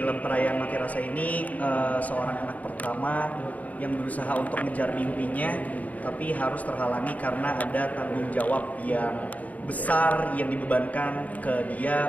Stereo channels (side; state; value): right; late; 0.073 ms